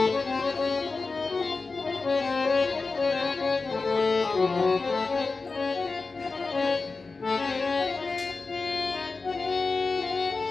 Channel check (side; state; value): right; quieter; 4.0 dB